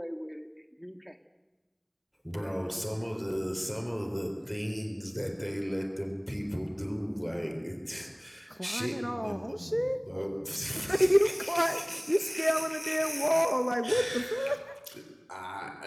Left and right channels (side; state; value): both; identical; correlation 1.00